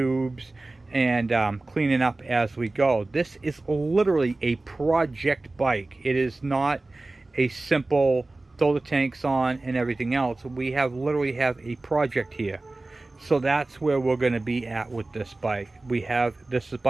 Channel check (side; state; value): left; quieter; 3.0 dB